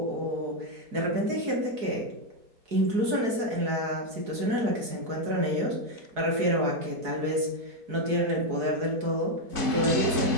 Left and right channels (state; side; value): late; left; 4.7 ms